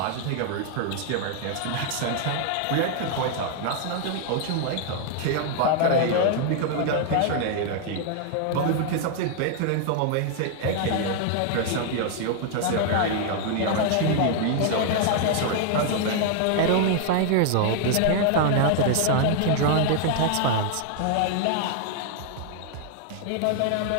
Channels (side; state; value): both; different; correlation 0.00